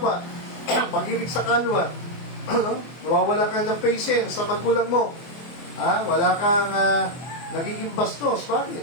pag-ibig sa kanwa. Nawawala ka ng patience sa magulang mo. Wala kang nagiging bastos.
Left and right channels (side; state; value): right; late; 24 ms